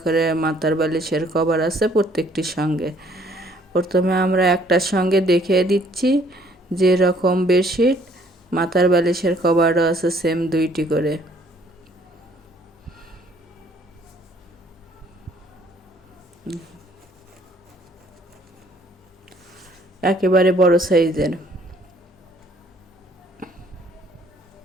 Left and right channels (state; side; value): normal; both; correlation 0.61